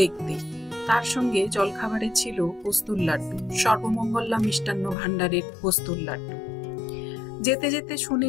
তার সঙ্গে জলখাবারে ছিল পোস্তুর লাড্ডু, সর্বমঙ্গলা মিষ্টান্ন ভাণ্ডারের পোস্তুর লাড্ডু। যেতে যেতে শুনে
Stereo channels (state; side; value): drops out; right; at 5.0 s